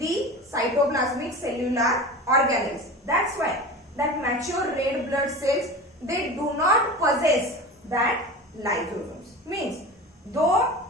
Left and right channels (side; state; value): both; normal; correlation 0.32